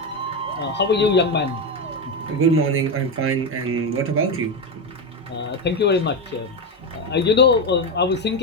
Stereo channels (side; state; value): both; normal; correlation 0.11